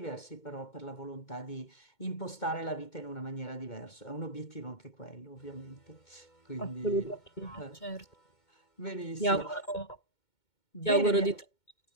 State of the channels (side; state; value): right; late; 2.2 ms